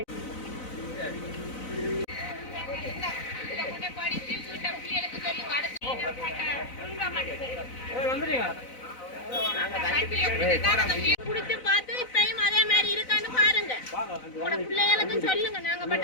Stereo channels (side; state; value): right; late; 4.0 ms